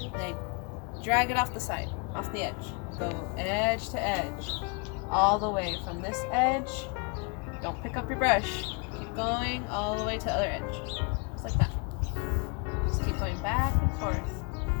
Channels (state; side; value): quieter; right; 34.1 dB